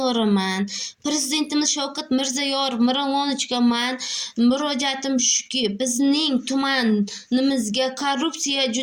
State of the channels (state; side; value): identical; both; correlation 1.00